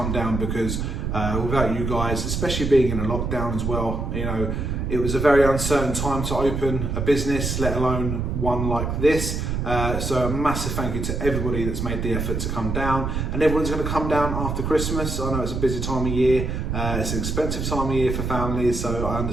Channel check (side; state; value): right; noise; rumble, 2 dB below the sound